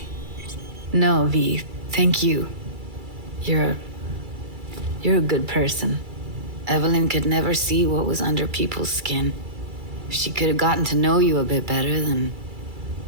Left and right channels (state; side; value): late; left; 2.3 ms